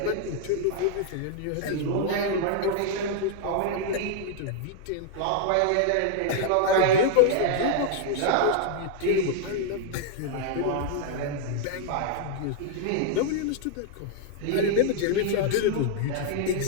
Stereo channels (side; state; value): both; different; correlation -0.01